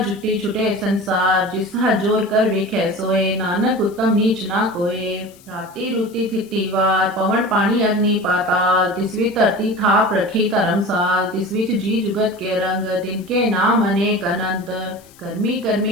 जुटी छुटे संसार, जिस जोर कर वेखे सोए, नानक उत्तम नीच ना कोए, राती रूती थिति वार, पवन पानी अग्नि पाताल, तिसवी धरती थाप रखी धर्मसाल, तिसविच जी जुगत के रंग, तिनके नाम अनेक अनंत, कर्मी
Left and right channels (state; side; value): noise; left; hiss, 26 dB below the sound